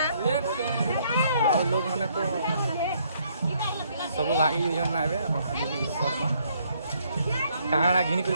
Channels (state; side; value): inverted; both; correlation -0.68